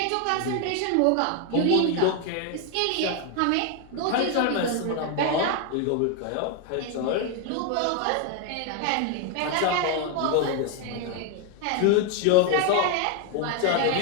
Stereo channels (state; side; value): different; both; correlation 0.01